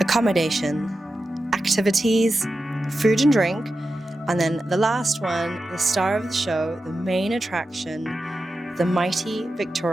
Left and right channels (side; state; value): both; normal; correlation 0.91